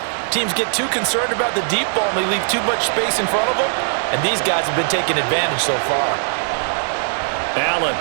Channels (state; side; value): silent; left; digital silence